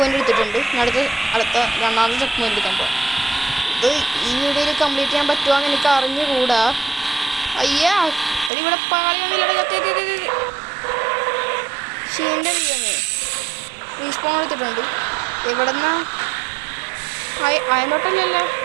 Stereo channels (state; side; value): drops out; left; at 8.5 s